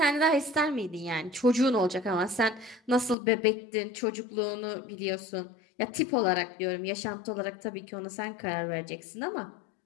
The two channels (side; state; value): right; drops out; at 3.2 s